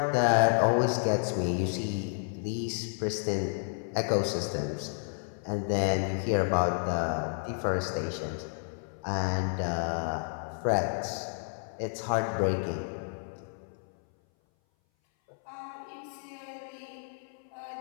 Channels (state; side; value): silent; right; 57 dB below the other